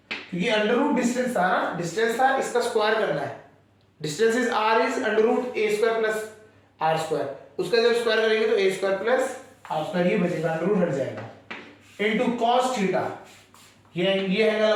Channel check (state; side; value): identical; both; correlation 1.00